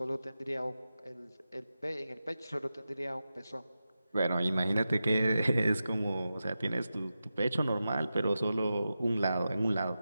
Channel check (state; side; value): inverted; both; correlation -0.92